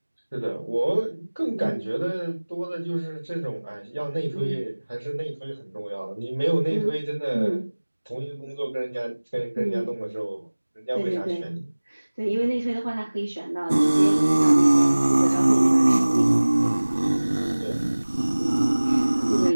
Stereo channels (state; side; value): inverted; both; correlation -1.00